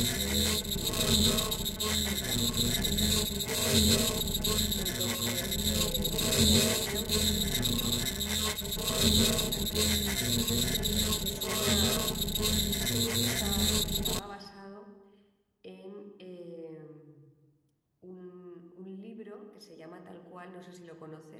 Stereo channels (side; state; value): both; identical; correlation 1.00